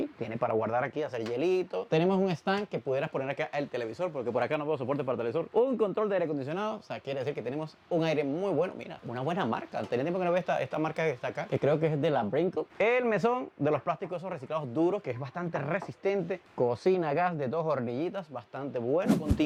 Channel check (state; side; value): identical; both; correlation 1.00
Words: tiene para guardar aquí, hacer hielito. Tenemos un stand que pudieras poner acá el televisor, porque por acá no veo soporte para televisor. Un control de aire acondicionado, o sea, quiere decir que tenemos un aire muy bueno, mira, una buena marca. Tenía tiempo que no veo esta marca que está acá, que creo que es de la Brinkle. El mesón de los plásticos esos reciclados duros, que es bastante resistente. Cocina gas de 2 hornillitas, bastante bueno.